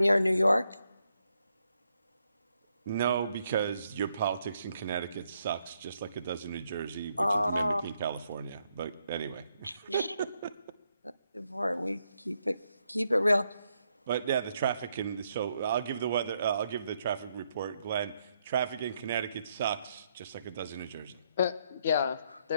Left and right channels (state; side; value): inverted; both; correlation -0.77